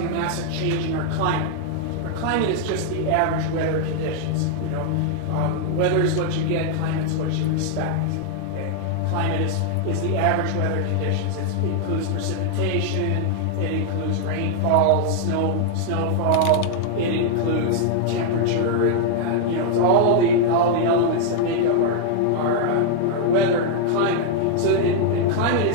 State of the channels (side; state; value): both; different; correlation 0.00